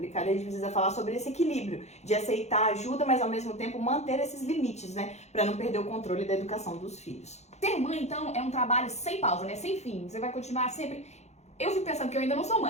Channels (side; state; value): right; late; 0.32 ms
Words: e a gente precisa falar sobre esse equilíbrio de aceitar a ajuda, mas ao mesmo tempo manter esses limites, né? Pra não perder o controle da educação dos filhos. Ser mãe, então, é um trabalho sem pausa, né? Sem fim. Você vai continuar sempre... Eu fico pensando que eu ainda não sou